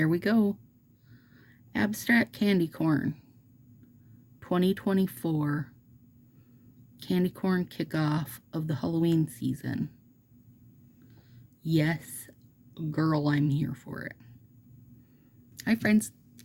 we go. Abstract Candy Corn 2024 Candy corn kickoff of the Halloween season. Yes, girl, I'm here for it. Hi, friends.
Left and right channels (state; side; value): identical; both; correlation 1.00